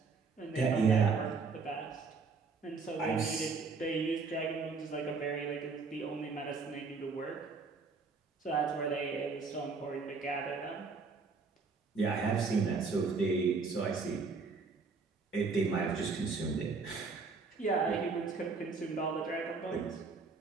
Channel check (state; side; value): quieter; left; 4.6 dB